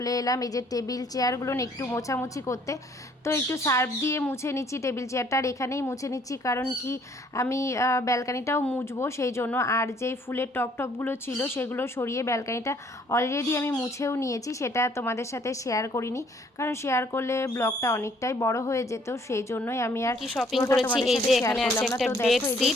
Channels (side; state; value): both; normal; correlation 0.62